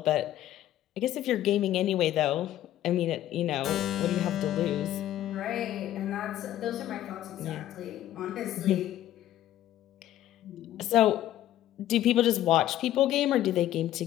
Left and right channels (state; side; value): quieter; right; 13.0 dB